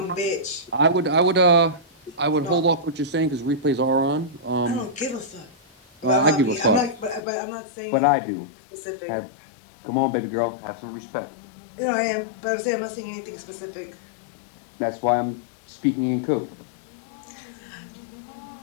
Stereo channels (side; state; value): right; drops out; at 7.2 s